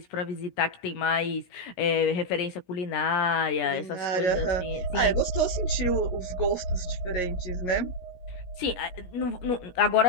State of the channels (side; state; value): right; late; 17 ms